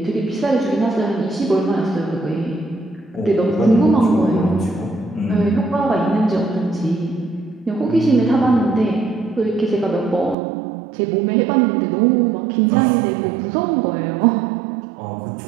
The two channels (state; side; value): drops out; left; at 10.4 s